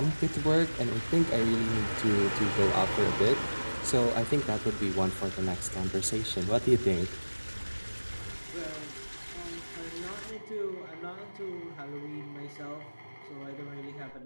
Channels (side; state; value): both; inverted; correlation -1.00